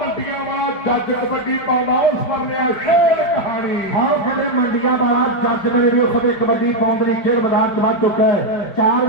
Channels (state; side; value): late; right; 5.0 ms